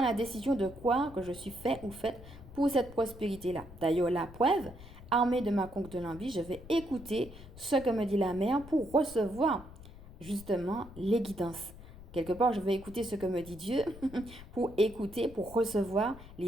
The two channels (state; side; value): noise; left; rumble, 17 dB below the sound